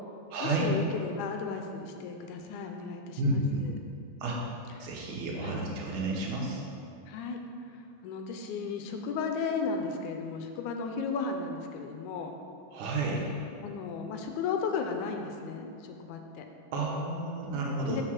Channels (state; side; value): normal; both; correlation -0.03